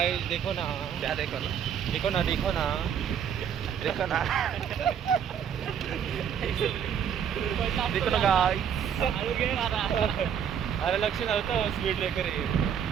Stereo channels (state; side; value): quieter; left; 8.3 dB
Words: देखो ना, क्या देखो ना, देखो ना, देखो ना, देखो ना, देखो ना गाइस। अरे लक्ष नव्हतं स्पीड ब्रेकर आहे